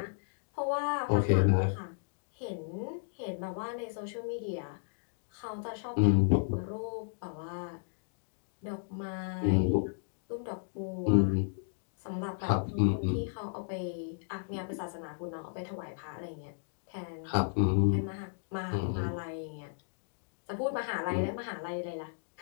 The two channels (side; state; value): right; silent; digital silence